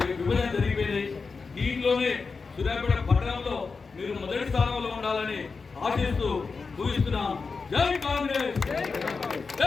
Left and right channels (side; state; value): right; quieter; 4.7 dB